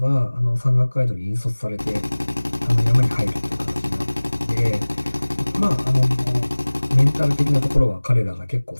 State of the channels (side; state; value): both; inverted; correlation -1.00